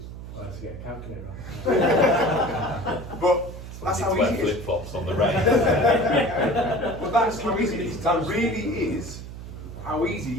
I have to get a calculator. But that's how Need to wear easy it is. flip flops on the rain. But that's how easy it is. That really is how easy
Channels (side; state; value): right; noise; hum, 11 dB below the sound